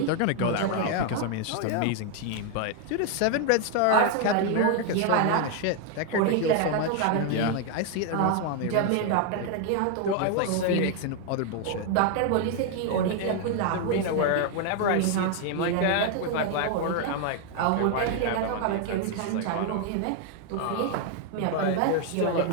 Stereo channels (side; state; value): both; different; correlation 0.00